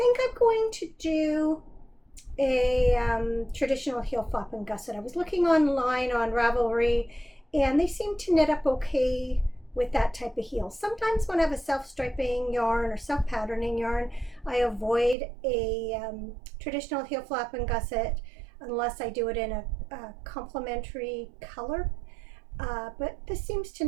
I'm going to do a traditional heel flap and gusset. I was looking online on Ravelry, and they seem to knit up okay with that type of heel. Sometimes when I have a self-striping yarn or self-patterning yarn, I avoid a traditional heel flap and gusset unless I do it in a complementary color. But this seems to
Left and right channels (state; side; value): drops out; left; at 15.2 s